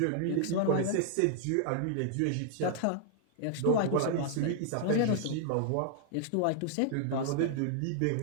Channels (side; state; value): both; different; correlation -0.01